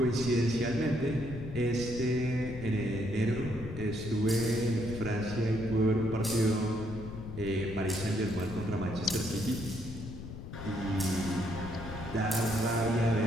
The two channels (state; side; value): noise; left; rumble, 10 dB below the sound